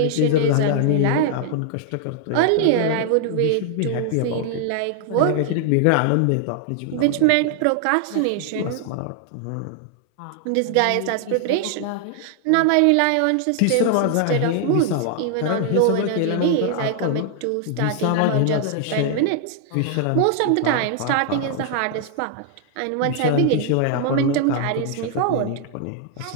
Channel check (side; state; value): both; different; correlation 0.00